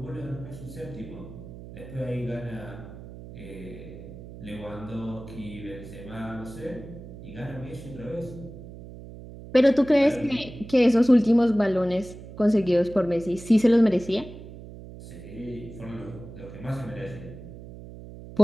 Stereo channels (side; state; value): right; noise; hum, 14 dB below the sound